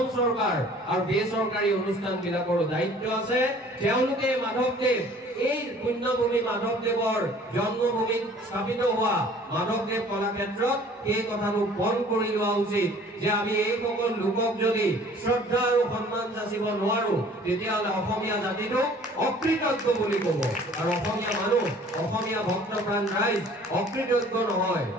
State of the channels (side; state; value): both; normal; correlation 0.51